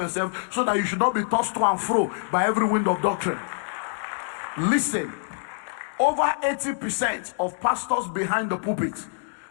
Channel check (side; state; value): right; silent; digital silence